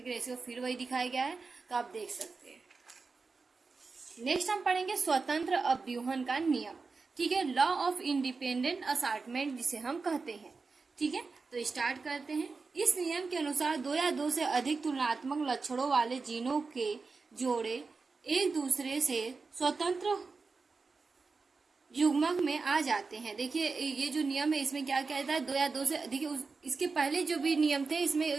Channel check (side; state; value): left; quieter; 4.4 dB